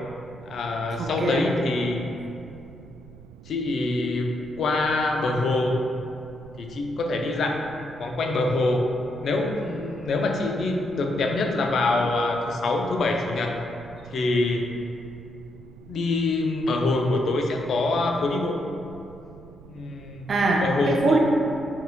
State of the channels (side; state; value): right; noise; rumble, 19 dB below the sound